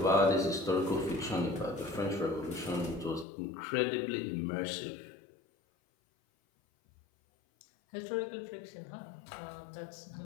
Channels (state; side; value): drops out; right; at 3.2 s